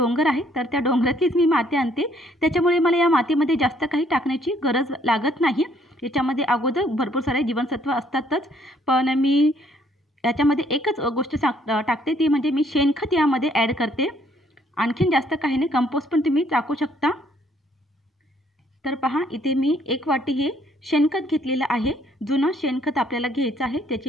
आहे, तर त्या डोंगरातलीच मी माती आणते, त्याच्यामुळे मला या मातीमध्ये जास्त काही टाकण्याची गरज लागत नाही। याच्यामध्ये अगोदर भरपूर सारे जीवनसत्व असतातच, पण मी याच्यामध्ये एकच गोष्ट टाकते, ती म्हणजे मी शेणखत यामध्ये ॲड करते। आणखीन जास्त काही नाही, कंपोस्ट पण तुम्ही टाकू शकता। तर पहा, इथे मी 1 वाटी हे शेणखत घेतलेलं आहे। जुनं शेणखत आपल्याला घ्यायचं आहे,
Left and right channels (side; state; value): both; normal; correlation 0.65